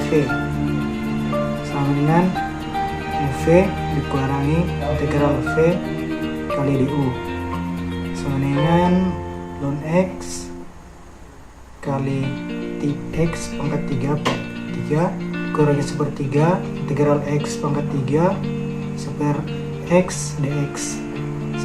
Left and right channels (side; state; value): both; identical; correlation 1.00